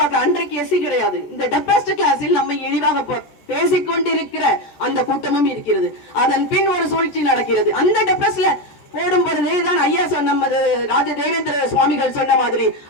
அன்றைக்கு எஸ்சி கிடையாது. இந்த டெப்ரஸ்ட் கிளாஸில் நம்ம இழிவாக பேசிக்கொண்டிருக்கிற அந்த கூட்டமும் இருக்கிறது. அதன் பின் ஒரு சூழ்ச்சி நடக்கிறது. அந்த டெப்ரஸ்ட்ல போடும் பொழுதுதான் ஐயா நமது ராஜ தேவேந்திர சுவாமிகள் சொன்ன மாதிரி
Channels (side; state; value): right; late; 14 ms